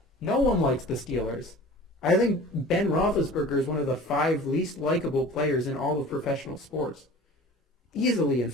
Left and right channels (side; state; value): both; normal; correlation 0.43